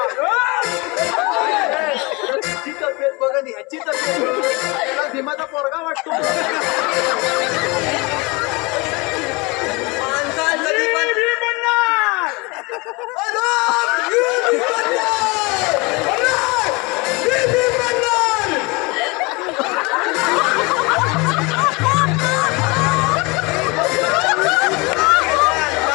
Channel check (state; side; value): quieter; right; 26.4 dB